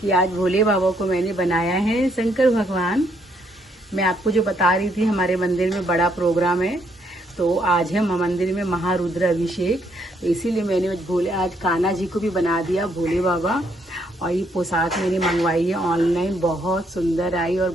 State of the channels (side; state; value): both; normal; correlation 0.72